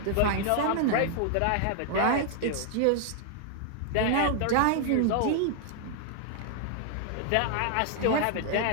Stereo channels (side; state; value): both; different; correlation 0.00